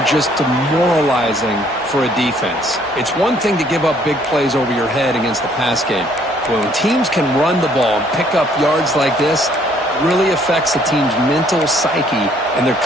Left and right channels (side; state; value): both; normal; correlation 0.63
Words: just demoralizing for a defense. It's one thing to give up big plays over your head against the pass game. But when teams can run the ball and pick up yards like this, it really affects the team's mental psyche and their